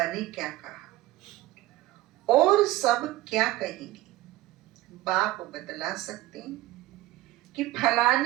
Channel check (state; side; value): quieter; left; 16.9 dB